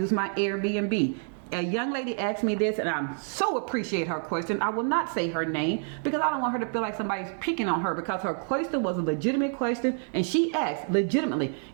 my Airbnb? A young lady asked me this, and I so appreciate her question. I will not say her name because I don't want her to feel like somebody's picking on her, because her question was a legitimate question, and she asked legitimately,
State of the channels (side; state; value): left; silent; 59 dB below the other